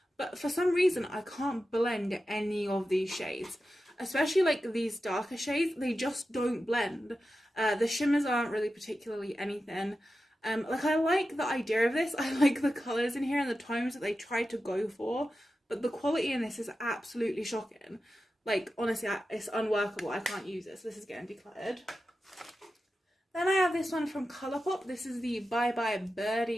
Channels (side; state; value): both; normal; correlation 0.92